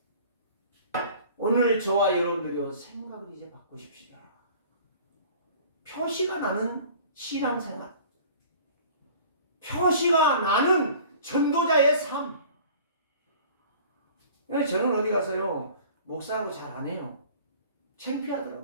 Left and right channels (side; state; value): both; inverted; correlation -0.46